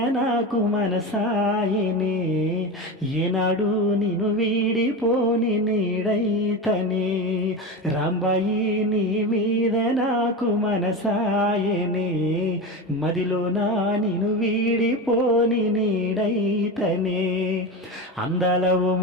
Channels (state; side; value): normal; both; correlation 0.22